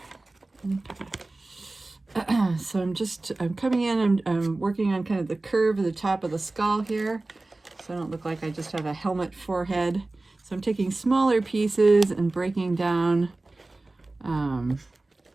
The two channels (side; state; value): left; quieter; 3.0 dB